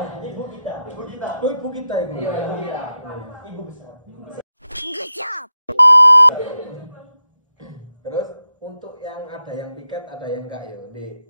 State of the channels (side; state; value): both; inverted; correlation -0.88